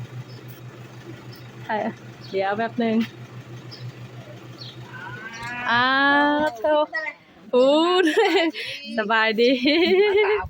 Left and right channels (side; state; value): both; identical; correlation 1.00